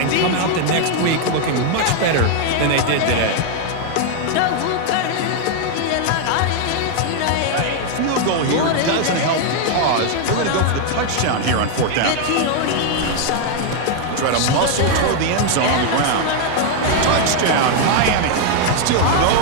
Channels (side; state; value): both; different; correlation 0.00